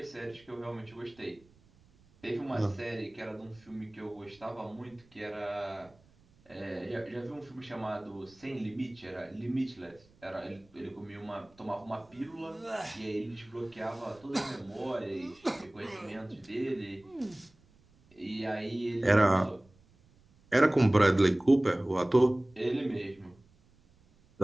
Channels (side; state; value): right; noise; rumble, 29 dB below the sound